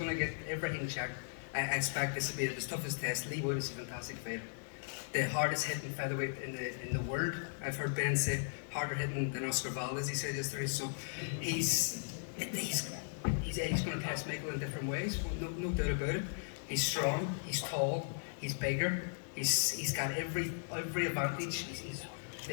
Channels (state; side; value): silent; right; digital silence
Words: to get everything checked. I expect this to be the toughest test. Leigh Wood is a fantastic fighter. The hardest hitting featherweight in the world. I've heard Ben say harder hitting than Oscar Valdez, he said yesterday. So he's going to test Michael in different ways, no doubt about it. He's strong, he's tall, he's bigger, he's got every advantage.